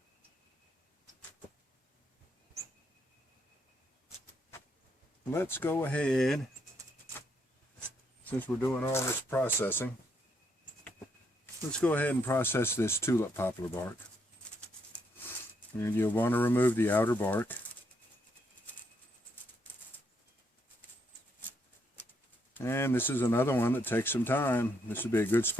Let's go ahead, since we're doing all this processing, let's go ahead and process this tulip poplar bark. And you'll want to remove the outer bark. And this is another one that takes some time. This would be a good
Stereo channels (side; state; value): both; normal; correlation 0.75